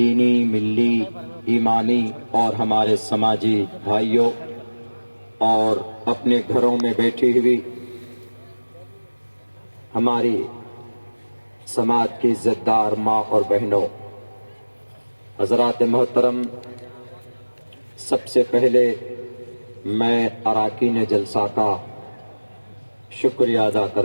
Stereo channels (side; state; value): both; inverted; correlation -1.00